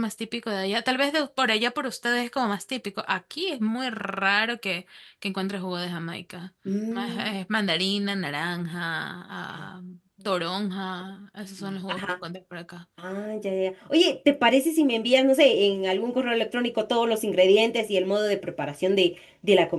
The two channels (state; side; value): identical; both; correlation 1.00